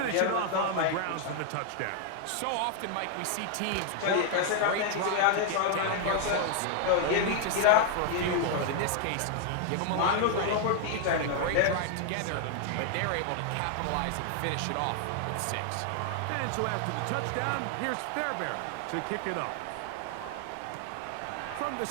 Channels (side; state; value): both; different; correlation 0.00